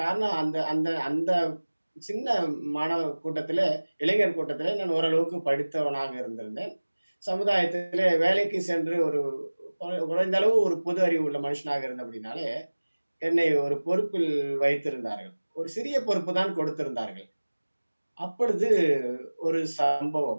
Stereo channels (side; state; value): both; inverted; correlation -1.00